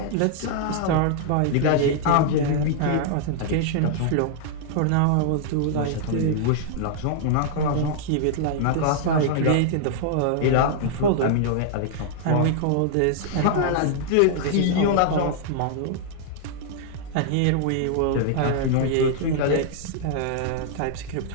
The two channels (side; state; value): both; different; correlation -0.01